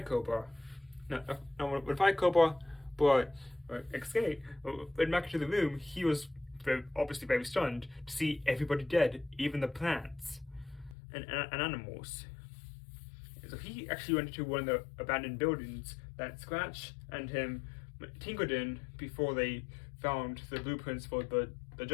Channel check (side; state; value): right; drops out; at 11.0 s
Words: Cobra. Now when Fire Cobra escaped, went back to the room, he was obviously very stunned to see everybody dead, even the plants and animals. So he actually went to one of the abandoned buildings that Scratch and him tinkered in before they found the blueprints for the